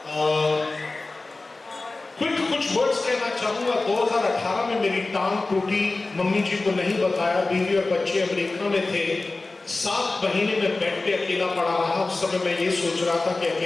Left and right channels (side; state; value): right; quieter; 3.3 dB